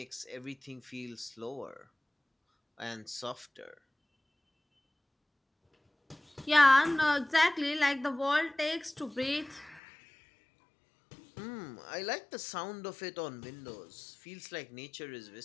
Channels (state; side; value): drops out; right; at 9.8 s